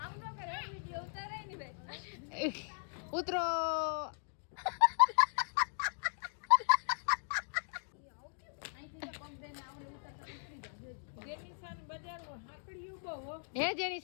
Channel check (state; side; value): silent; right; digital silence